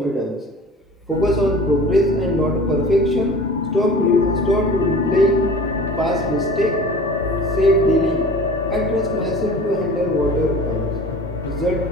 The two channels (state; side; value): normal; both; correlation 0.41